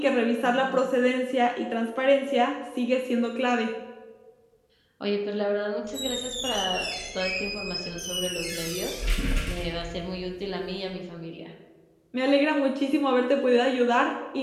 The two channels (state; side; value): identical; both; correlation 1.00